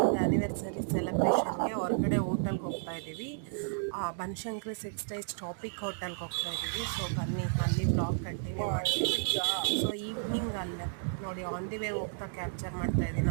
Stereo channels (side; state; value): left; silent; digital silence